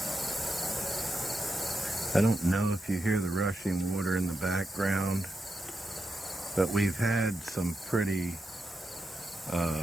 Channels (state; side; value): normal; both; correlation 0.86